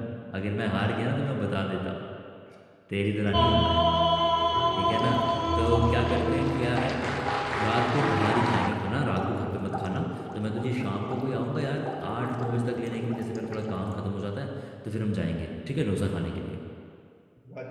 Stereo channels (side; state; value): both; identical; correlation 1.00